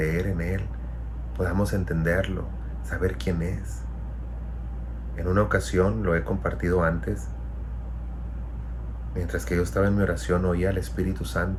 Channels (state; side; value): identical; both; correlation 1.00